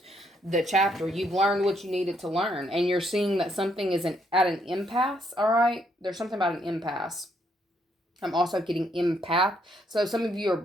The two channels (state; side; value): normal; both; correlation 0.73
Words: the chapter. You've learned what you needed to learn, and you're seeing that something is at an impasse. All right. There's something about an impasse. I'm also getting empath. So some of you are